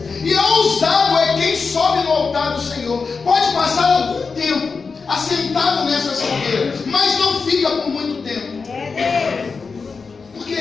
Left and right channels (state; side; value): quieter; right; 4.9 dB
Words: E ousado é quem sobe no altar do Senhor. Pode passar algum tempo assentado nessas cadeiras, mas não fica por muito tempo. Porque